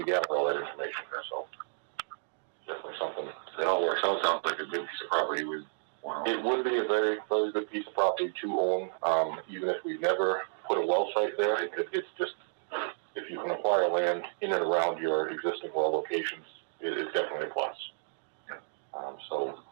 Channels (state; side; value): silent; left; digital silence